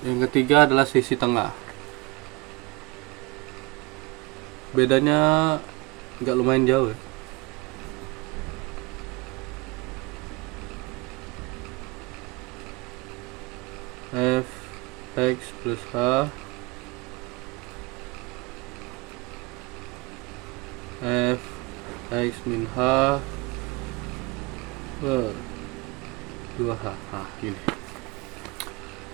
yang ketiga adalah selisih tengah. Bedanya nggak lumayan jauh ya. F X plus H F X min H per 2H. Nah,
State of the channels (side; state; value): left; quieter; 24.7 dB